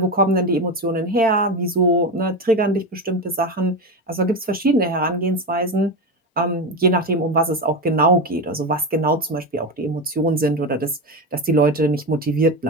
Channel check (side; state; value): both; normal; correlation 0.17